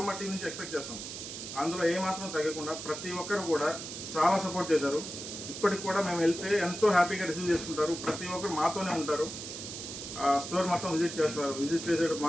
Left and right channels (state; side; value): noise; right; hiss, 8 dB below the sound